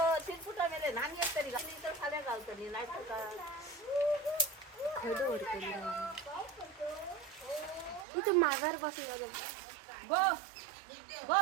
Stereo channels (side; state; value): left; drops out; at 8.1 s